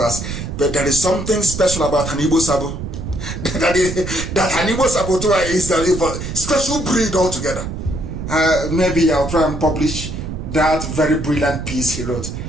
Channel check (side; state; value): right; noise; rumble, 6 dB below the sound